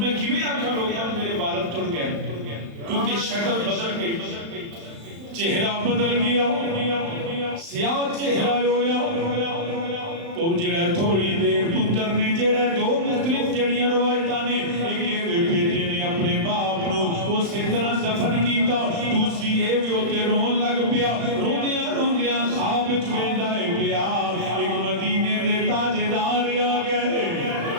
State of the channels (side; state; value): left; late; 35 ms